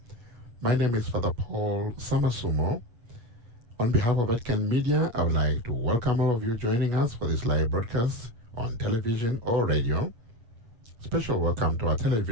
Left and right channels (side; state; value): left; late; 8.3 ms